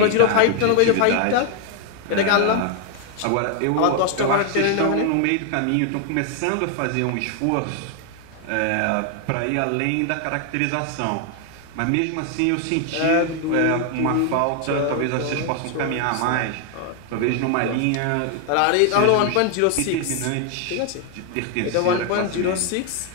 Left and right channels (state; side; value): different; both; correlation 0.00